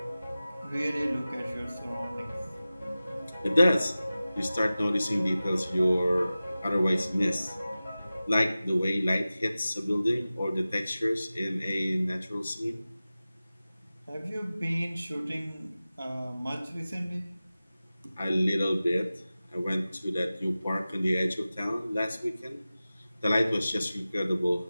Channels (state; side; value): inverted; both; correlation -0.96